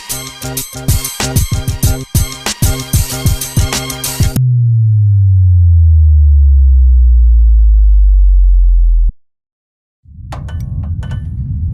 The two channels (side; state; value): both; identical; correlation 1.00